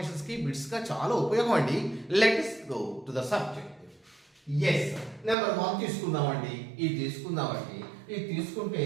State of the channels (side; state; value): left; drops out; at 5.4 s